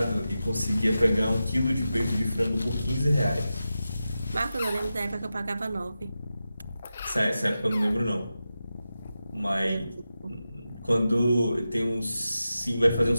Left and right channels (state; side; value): inverted; both; correlation -0.92